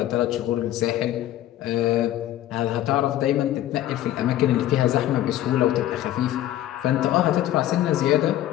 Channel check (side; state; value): right; quieter; 13.3 dB